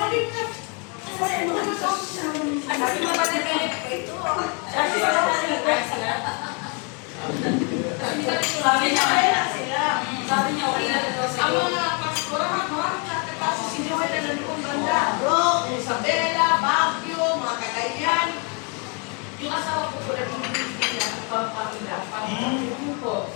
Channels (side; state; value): right; quieter; 35.3 dB